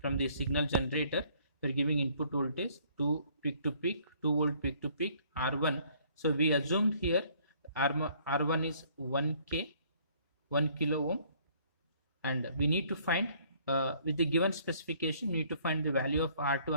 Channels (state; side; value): inverted; both; correlation -0.61